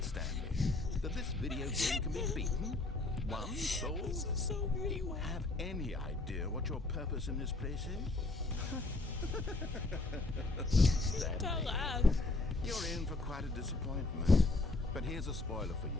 Stanley? That this video game can be beaten? One soul? This is so Do you weird. have any idea what your purpose in this place is? Don't laugh. You're in for quite a disappointment. But here's a spoiler for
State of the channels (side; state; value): right; quieter; 3.1 dB